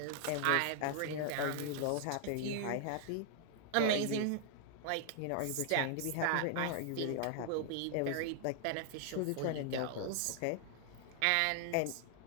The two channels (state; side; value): different; both; correlation 0.00